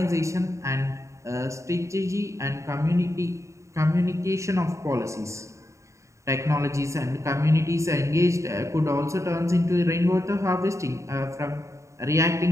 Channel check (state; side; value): late; left; 0.14 ms